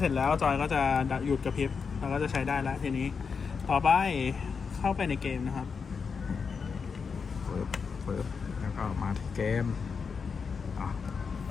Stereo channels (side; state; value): right; quieter; 5.6 dB